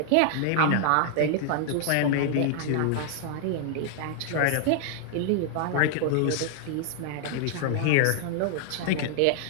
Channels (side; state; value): both; different; correlation 0.00